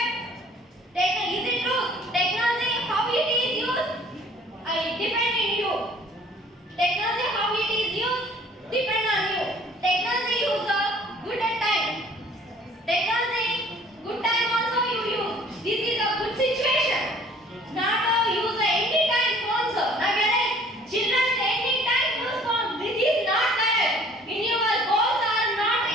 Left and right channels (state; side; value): normal; both; correlation 0.54